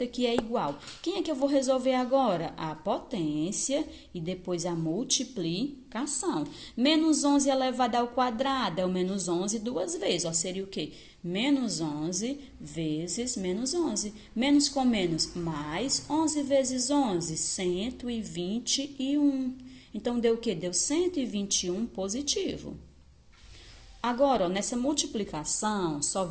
que é igual. Quem é que eu vou resolver agora? A potência e depois a multiplicação. Menos 11 elevado ao quadrado é o menos 11 duas vezes. Ó, seria o quê? Menos 11 vezes menos 11. Menos com menos, mais 11 vezes 11, 121. Então, deu o quê? Deu 121 positivo. Agora, ó, nessa multiplicação, só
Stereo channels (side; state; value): both; identical; correlation 1.00